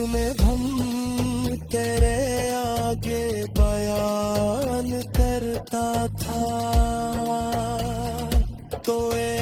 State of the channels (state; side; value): identical; both; correlation 1.00